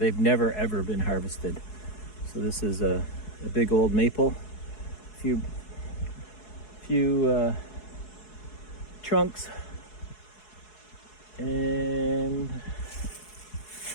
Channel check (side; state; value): right; late; 4.7 ms